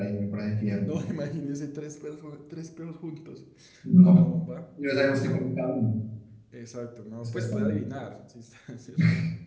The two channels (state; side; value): identical; both; correlation 1.00